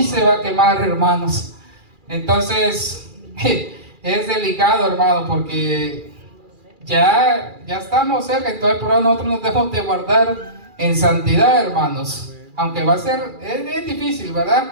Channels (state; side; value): late; left; 2.4 ms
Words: se va a quemar, hermanos. Entonces es delicado, hermano, porque ya estamos cerca. Entonces por ahora nosotros nos debemos de guardar en santidad, hermanos. Aunque va a ser, es difícil,